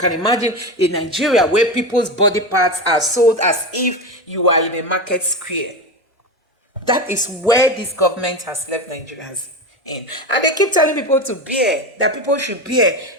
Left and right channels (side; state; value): both; normal; correlation 0.21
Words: imagine in Nigeria where people's body parts are sold as if you are in a market square. That is where this government has left Nigerians in. And they keep telling people to bear, that people should bear,